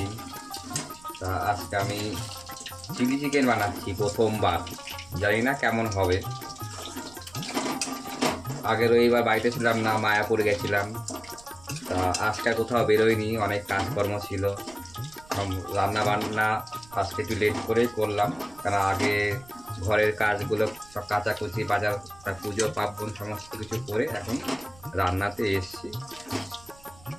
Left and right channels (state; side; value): noise; right; rumble, 23 dB below the sound